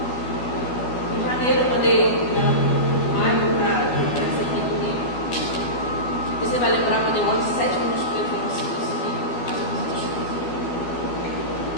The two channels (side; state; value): right; late; 12 ms